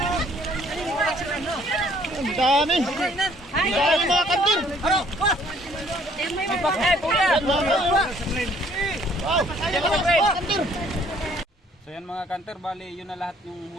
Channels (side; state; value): both; normal; correlation 0.61